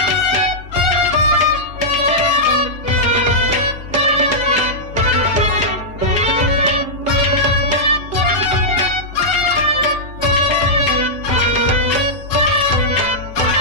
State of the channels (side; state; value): both; normal; correlation -0.10